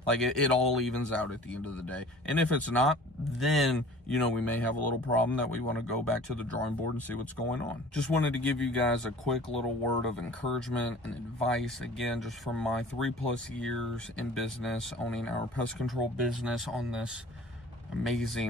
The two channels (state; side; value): normal; both; correlation 0.45